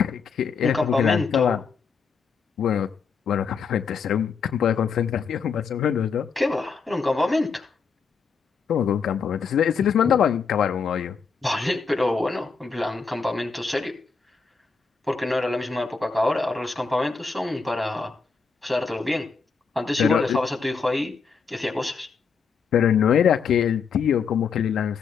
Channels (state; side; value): quieter; right; 5.5 dB